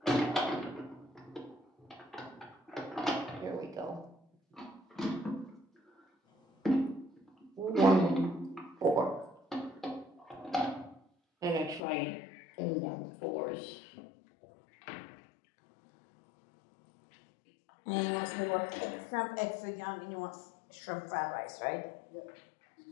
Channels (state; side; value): drops out; right; at 11.8 s